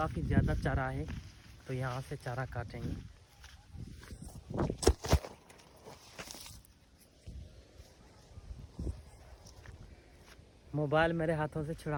ज़्यादा चारा है, तो यहाँ से चारा काटेंगे। मोबाइल मेरे हाथों से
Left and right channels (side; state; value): both; identical; correlation 1.00